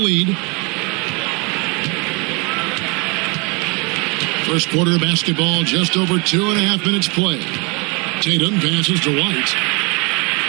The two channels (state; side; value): quieter; left; 30.6 dB